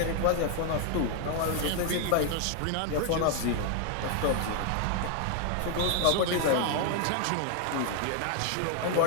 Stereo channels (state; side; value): different; both; correlation 0.00